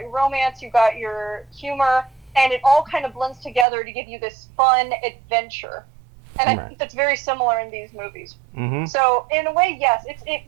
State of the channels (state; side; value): drops out; left; at 3.7 s